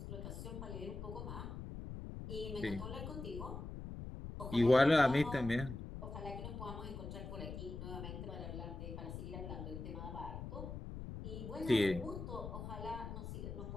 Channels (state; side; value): noise; left; rumble, 7 dB below the sound